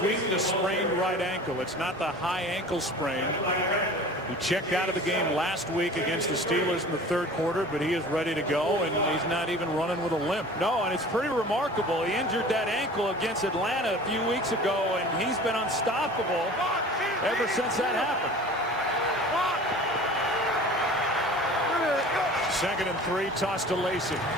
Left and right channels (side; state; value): both; normal; correlation 0.42